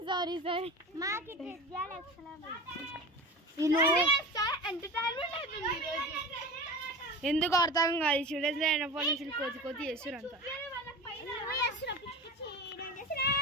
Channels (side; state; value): both; normal; correlation 0.32